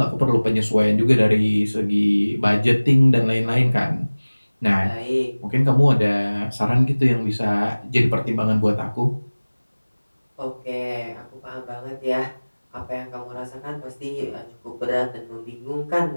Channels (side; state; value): both; inverted; correlation -1.00